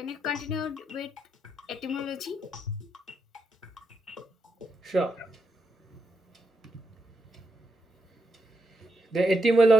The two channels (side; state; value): both; normal; correlation 0.83